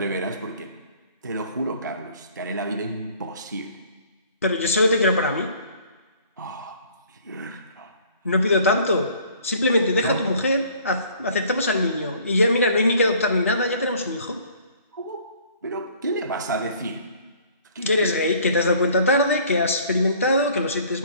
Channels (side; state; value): both; inverted; correlation -0.55